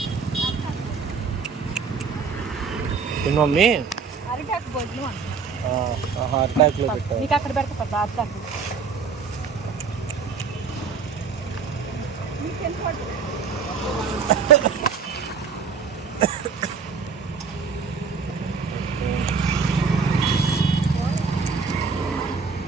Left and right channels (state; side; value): quieter; left; 5.4 dB